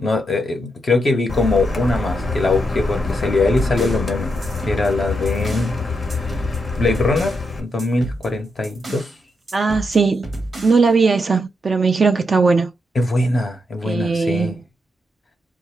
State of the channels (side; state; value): both; normal; correlation 0.82